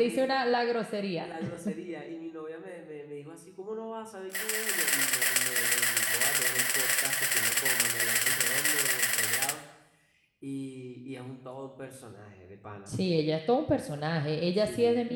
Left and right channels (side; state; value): both; identical; correlation 1.00